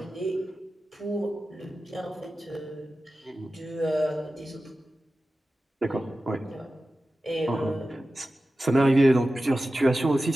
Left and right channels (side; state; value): both; normal; correlation 0.94